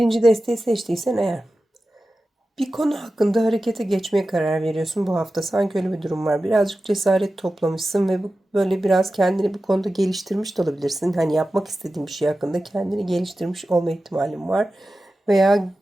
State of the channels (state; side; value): normal; both; correlation 0.94